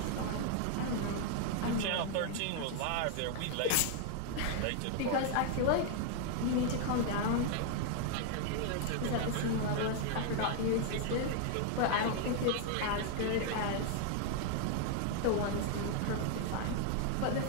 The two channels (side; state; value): both; different; correlation 0.00